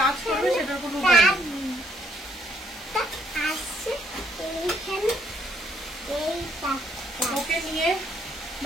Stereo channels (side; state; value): both; normal; correlation 0.69